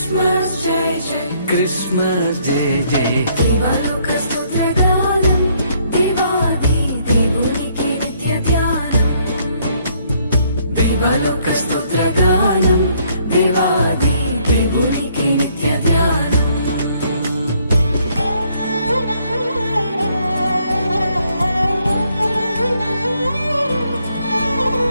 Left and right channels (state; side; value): inverted; both; correlation -0.68